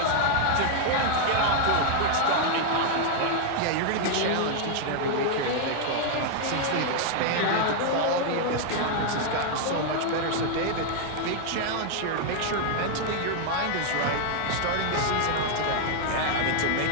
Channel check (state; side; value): different; both; correlation 0.00